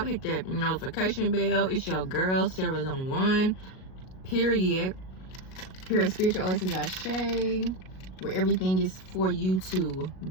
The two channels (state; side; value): late; right; 38 ms